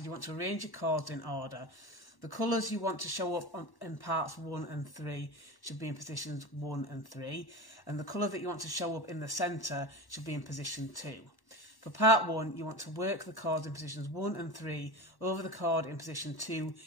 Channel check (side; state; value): right; late; 1.1 ms